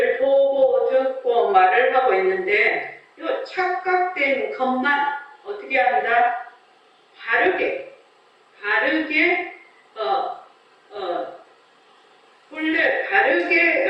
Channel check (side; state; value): both; identical; correlation 1.00